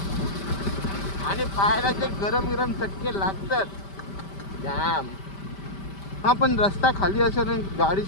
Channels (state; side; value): late; right; 5.1 ms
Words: आणि पायाला जे गरम चटके लागतात जाम. हां पण रस्ता खाली असेल आणि गाडी